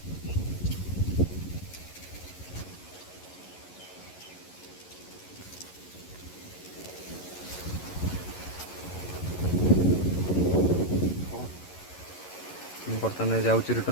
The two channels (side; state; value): right; late; 11 ms